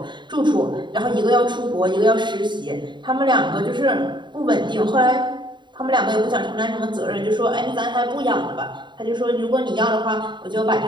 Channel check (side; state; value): left; late; 0.22 ms